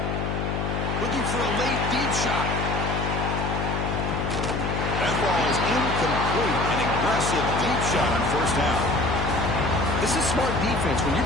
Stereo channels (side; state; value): left; noise; hum, 1 dB below the sound